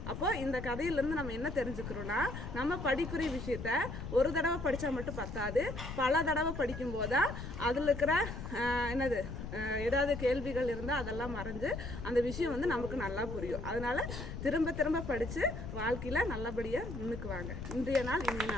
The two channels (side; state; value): left; noise; rumble, 8 dB below the sound